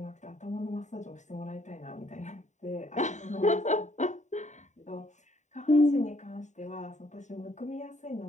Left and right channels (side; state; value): right; late; 0.34 ms